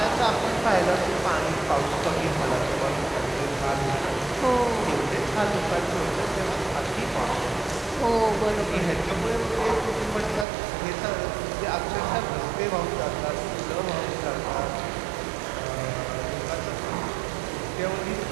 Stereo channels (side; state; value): left; drops out; at 10.5 s